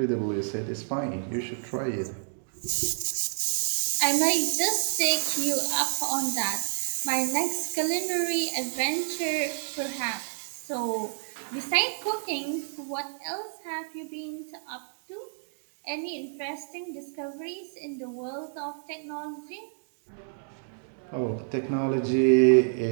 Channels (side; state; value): left; silent; digital silence